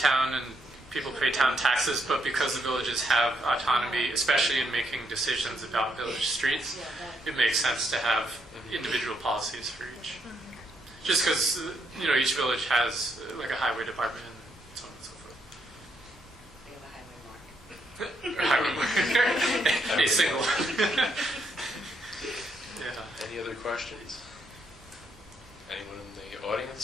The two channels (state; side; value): normal; both; correlation 0.76